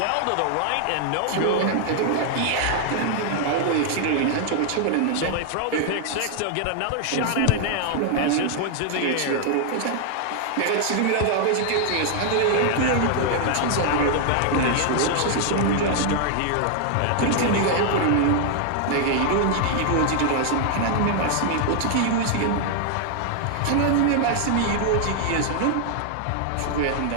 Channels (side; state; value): both; different; correlation 0.00